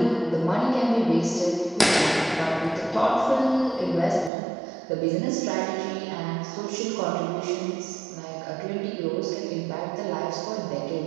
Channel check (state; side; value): drops out; left; at 4.3 s